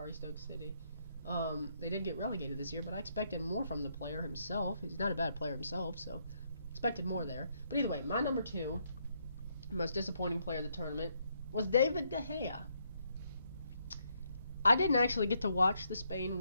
Stoke City. They did get relegated this year, but I expected more from the player himself. He's not a bad player himself, so expected more there. But either way, my number 2, most disappointing player of the tournament, was David De Gea. I didn't actually get to watch the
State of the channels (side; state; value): both; inverted; correlation -0.75